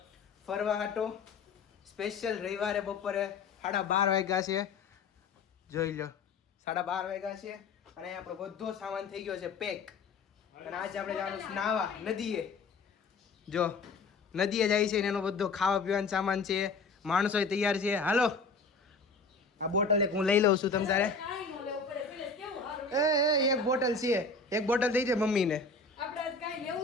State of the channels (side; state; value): right; quieter; 4.2 dB